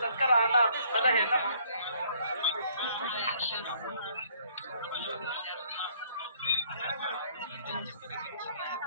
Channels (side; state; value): both; inverted; correlation -0.62